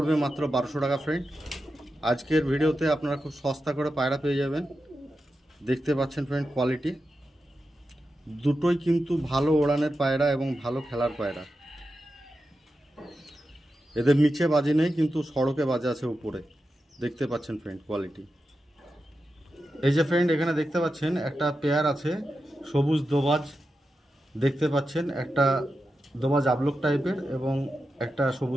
মাত্র 1200 টাকা ফ্রেন্ড। আজকের ভিডিওতে আপনারা খুব সস্তা করে পায়রা পেয়ে যাবেন, দেখতে পাচ্ছেন ফ্রেন্ড কোয়ালিটি দুটোই কিন্তু ভালো ওড়ানের পায়রা এবং ভালো খেলার পায়রা। এদের নিচে বাজে নেই কিন্তু সড়কে বাজে আছে উপরে, দেখতে পাচ্ছেন ফ্রেন্ড কোয়ালিটি। এই যে ফ্রেন্ড এখানে দেখতে পাচ্ছেন একটা পেয়ার আছে সবুজ দোবাজ, দেখতে পাচ্ছেন একটা দোবাজ আবলক টাইপের এবং একটা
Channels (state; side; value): normal; both; correlation 0.90